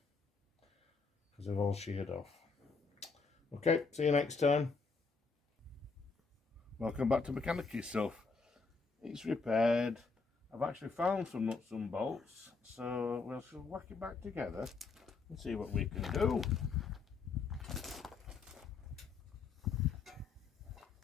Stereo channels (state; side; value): quieter; right; 4.6 dB